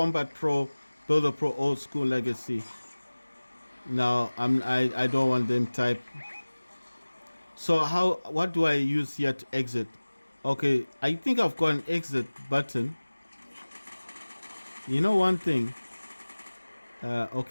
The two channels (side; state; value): both; inverted; correlation -1.00